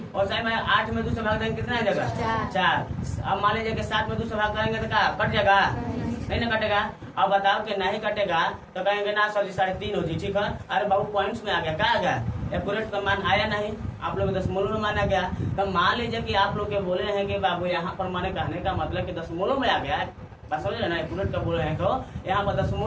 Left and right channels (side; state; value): both; identical; correlation 1.00